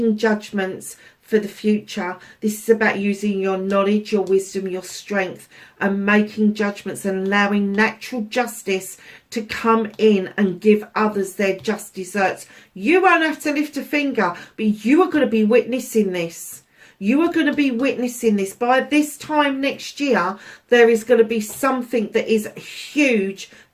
judgments for the future. This is about using your knowledge, your wisdom, your strength, and making judgments and allowing natural justice to come in and give others their just deserts. You won't have to lift a finger, but you are going to be witnessing this. You are going to be witnessing this. By this time next year, there is going to be something that is huge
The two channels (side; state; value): both; identical; correlation 1.00